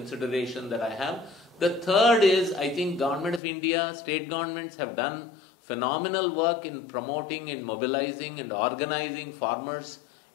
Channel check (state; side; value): drops out; right; at 3.4 s